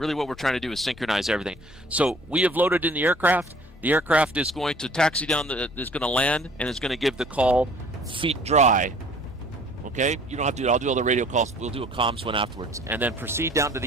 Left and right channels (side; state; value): both; normal; correlation 0.53